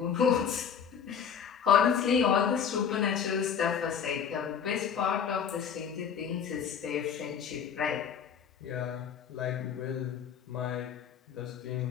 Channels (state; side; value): quieter; right; 7.4 dB